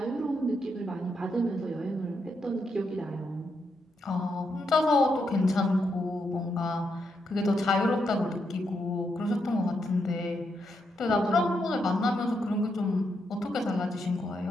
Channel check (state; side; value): normal; both; correlation 0.81